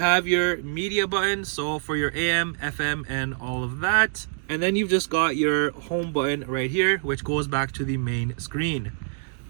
your media button, so for your AM, FM, and all of that. And then you've just got your home button right here, which goes back to the main screen.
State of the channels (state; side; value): silent; left; digital silence